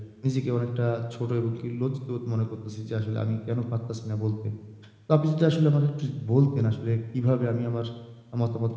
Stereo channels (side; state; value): both; identical; correlation 1.00